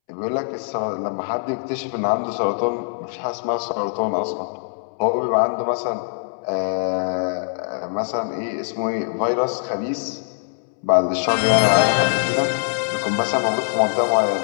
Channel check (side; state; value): right; silent; 64 dB below the other